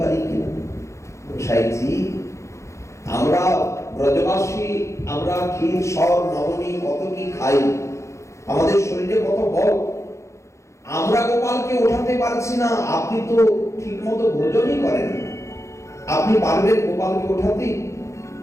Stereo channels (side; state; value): right; late; 0.14 ms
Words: কিনা। গোসাইজি, আমরা ব্রজবাসী, আমরা ক্ষীর, সর, নবনী কত কি খাই, আমাদের শরীরে কত বল, আমরা গোপালকে ওঠাতে পারছি না। আপনি তো ঠিক মতো ভোজনই করেন, আপনি পারবেন গোপালকে ওঠাতে?